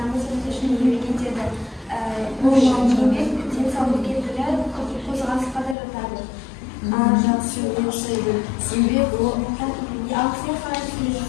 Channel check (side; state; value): right; drops out; at 5.8 s